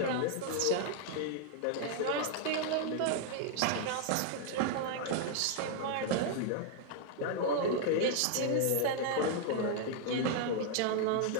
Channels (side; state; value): both; different; correlation 0.00